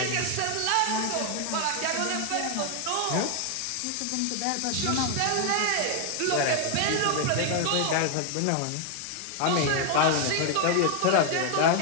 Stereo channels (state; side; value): different; both; correlation 0.00